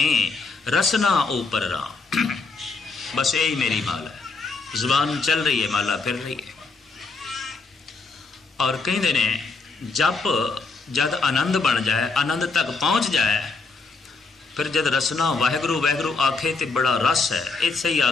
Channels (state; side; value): quieter; right; 4.1 dB